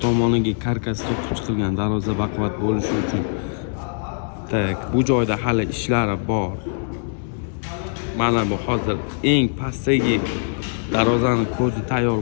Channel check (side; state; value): right; silent; 63 dB below the other